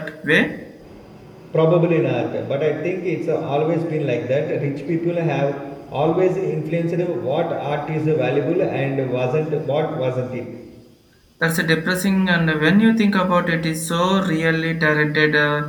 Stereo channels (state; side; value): identical; both; correlation 1.00